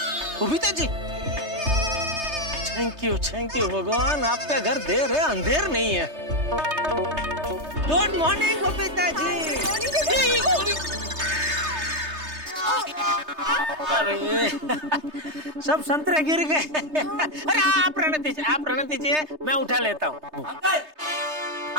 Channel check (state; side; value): late; left; 3.3 ms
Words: बबीता जी, थैंक यू भगवान, आपका घर देर है, अंधेर नहीं है। Good morning Babita ji. अरे सब संतरे गिर गए। अरे आप रहने दीजिए, मैं उठा लेता हूँ।